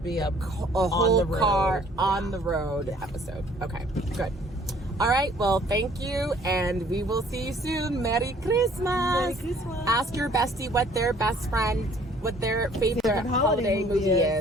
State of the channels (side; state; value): both; normal; correlation 0.57